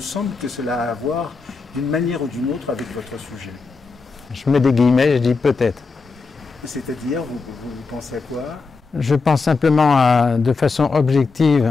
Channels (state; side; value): quieter; right; 4.4 dB